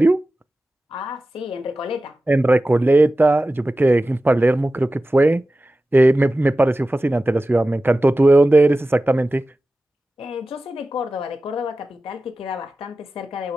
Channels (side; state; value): both; normal; correlation 0.95